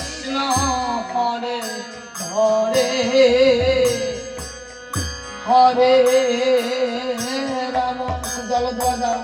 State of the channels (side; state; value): both; identical; correlation 1.00